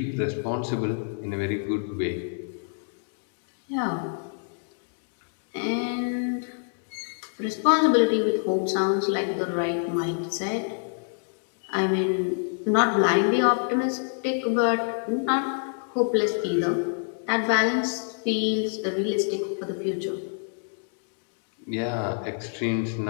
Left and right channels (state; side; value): silent; right; digital silence